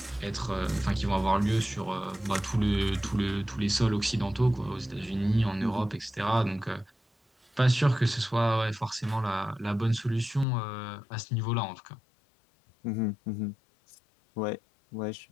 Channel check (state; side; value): drops out; right; at 10.5 s